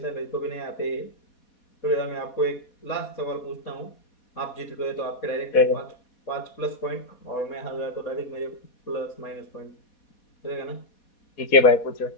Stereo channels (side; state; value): right; late; 4.2 ms